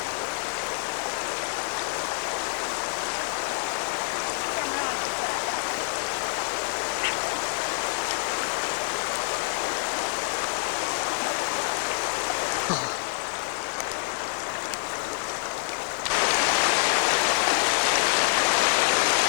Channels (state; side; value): silent; right; digital silence